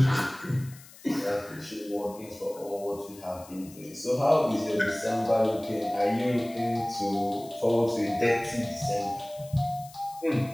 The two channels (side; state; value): left; noise; hiss, 21 dB below the sound